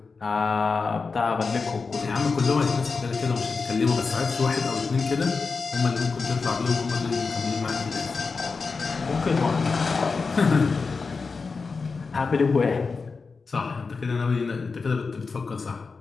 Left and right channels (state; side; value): quieter; right; 4.6 dB